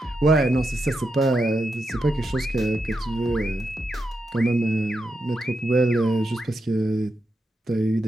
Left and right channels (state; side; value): normal; both; correlation 0.86